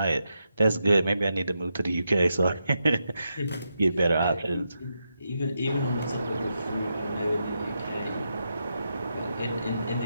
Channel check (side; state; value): both; inverted; correlation -0.85